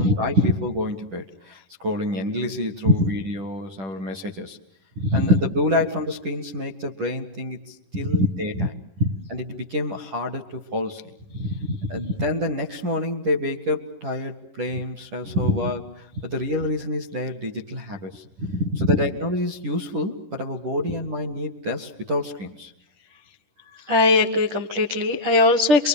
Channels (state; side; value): late; left; 10 ms